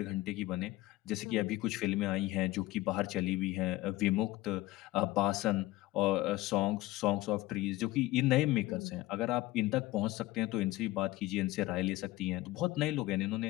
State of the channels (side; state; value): right; quieter; 17.7 dB